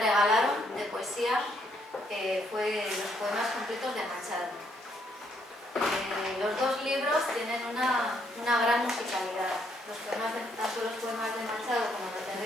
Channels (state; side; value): normal; both; correlation 0.72